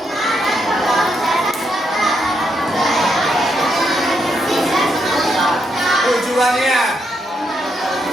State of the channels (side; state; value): both; normal; correlation 0.79